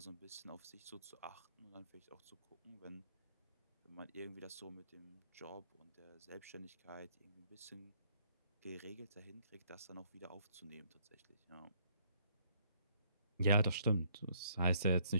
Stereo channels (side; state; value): both; inverted; correlation -0.67